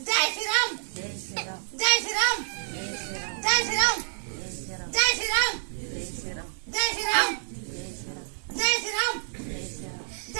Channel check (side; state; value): left; silent; digital silence